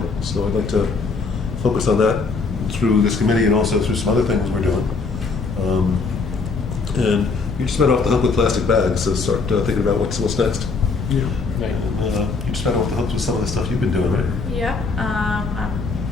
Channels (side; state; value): right; quieter; 4.3 dB